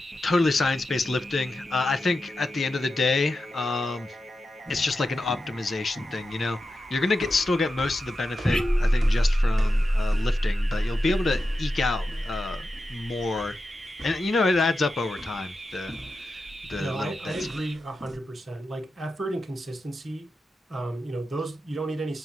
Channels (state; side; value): normal; both; correlation 0.90